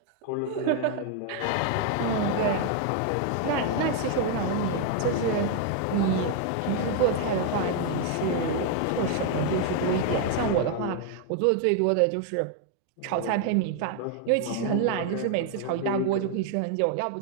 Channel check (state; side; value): different; both; correlation 0.00